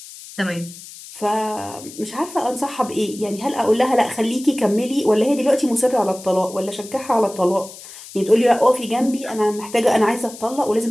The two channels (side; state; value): left; noise; hiss, 16 dB below the sound